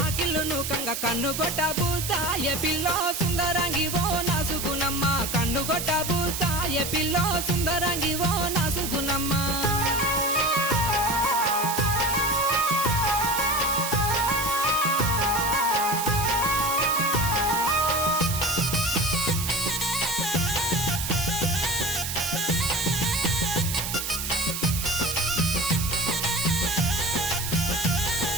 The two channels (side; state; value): right; noise; hiss, 4 dB below the sound